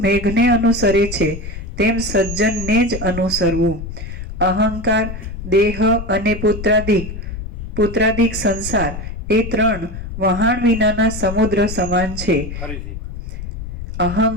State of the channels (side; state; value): left; noise; rumble, 8 dB below the sound